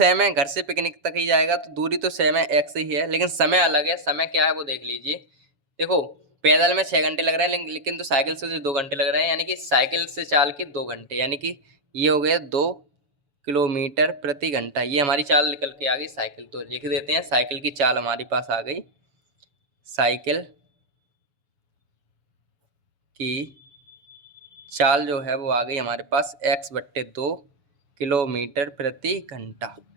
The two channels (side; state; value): left; late; 7.1 ms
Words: है, घर से पिकनिक तक ही जाएगा तो दूरी तो सेम है, एक्स ही है, लेकिन समय अलग है। समय क्या है वो देख लीजिए। देखो पैदल में 6 घंटे लग रहे हैं, लेकिन तो साइकिल से तो 2 घंटे लग रहे हैं, यानी कि साइकिल से चाल के 2 घंटे, यानी कि ये हो गए 2 किलोमीटर प्रति घंटा। ये हमारी चाल निकल के आ गई साइकिल। तो लिख देते हैं साइकिल की चाल हमारे पास आ गई, साइकिल की चाल जो है वो आ गई हमारे पास x/2 किलोमीटर प्रति घंटा।